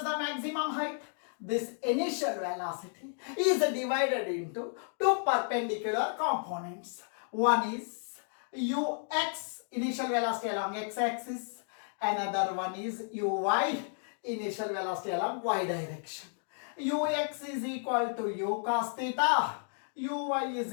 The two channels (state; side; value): silent; right; 56 dB below the other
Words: the maximum height. This initial velocity is divided into two perpendicular components. One is ux, initial velocity along x-axis. Another one is uy, initial velocity along y direction. Ux is equal to u cos theta. Uy